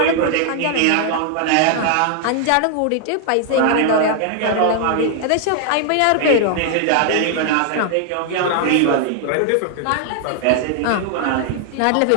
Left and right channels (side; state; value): both; different; correlation 0.00